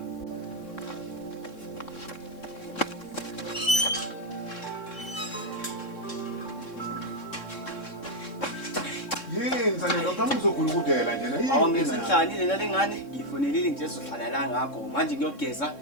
Yini sane lo kama uzogula ukudela nje na. Awungesenhlani lena lengane ngifonelile nje ezohlala la ngakho manje ngiyogeza.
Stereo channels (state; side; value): late; right; 3.6 ms